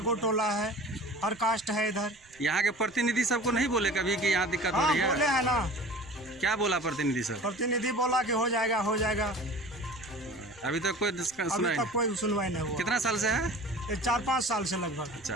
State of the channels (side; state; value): right; noise; rumble, 29 dB below the sound